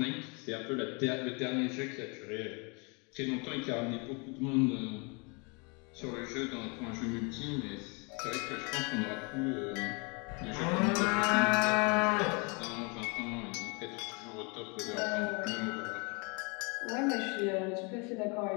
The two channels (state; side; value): quieter; right; 32.0 dB